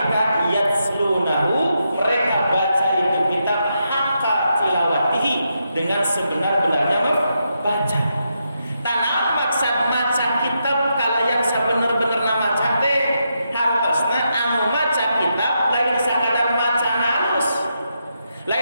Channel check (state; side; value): inverted; both; correlation -0.83